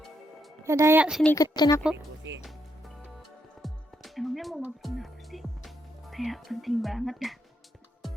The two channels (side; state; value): both; normal; correlation 0.79